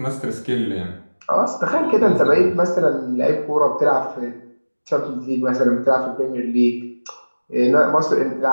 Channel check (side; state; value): both; inverted; correlation -1.00